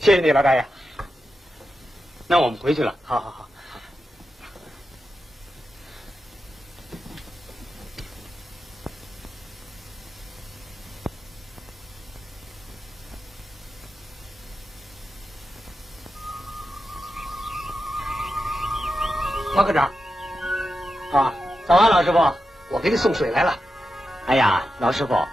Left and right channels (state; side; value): normal; both; correlation 0.89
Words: 谢你，老大爷。那我们回去了。好好好。王科长，啊，早安，老师傅。我给你送水来了。哎呀，老师傅，